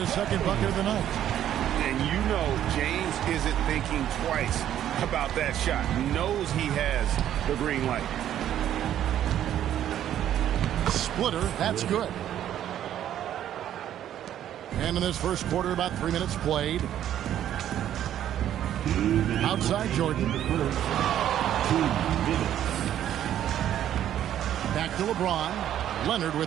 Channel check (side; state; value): left; quieter; 11.1 dB